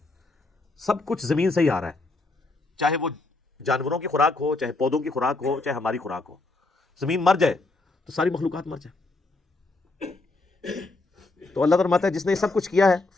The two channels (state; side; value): quieter; right; 3.2 dB